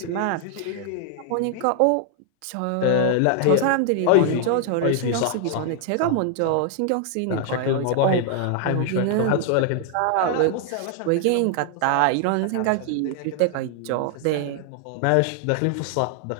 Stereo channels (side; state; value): both; different; correlation 0.00